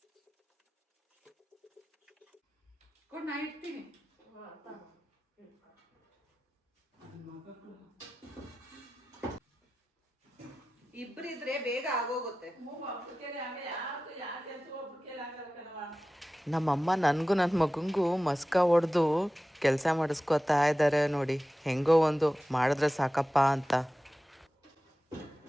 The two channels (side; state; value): both; normal; correlation 0.95